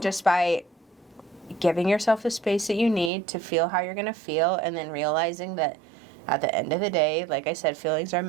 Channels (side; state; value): left; drops out; at 3.1 s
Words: by giving yourself the space that you need to feel how you're going to feel, and then realizing that at the end of the day, like I said, feelings are